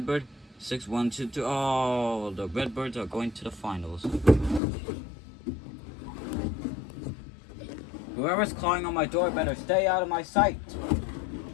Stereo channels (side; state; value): right; drops out; at 4.6 s